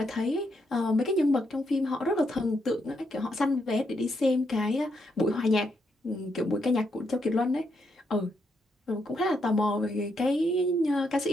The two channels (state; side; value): normal; both; correlation 0.78